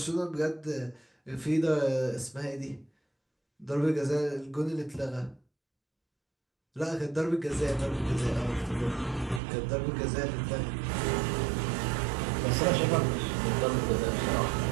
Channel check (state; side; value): drops out; left; at 9.4 s